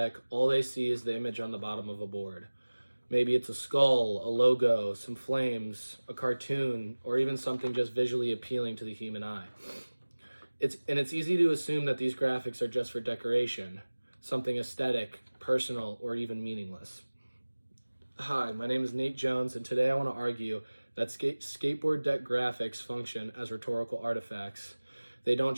all they see is the image on the bottom of a board. Maybe it's a skull, a logo, some flames, a cartoon, or even something just visually appealing to the human eye. It's easy to assume that these graphics are just for decoration, something aesthetic, personal, or even meaningless. Hi, my name is Nate Jones, and today I want to argue that skateboard deck graphics function as rhetorical artifacts. They don't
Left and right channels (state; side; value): inverted; both; correlation -1.00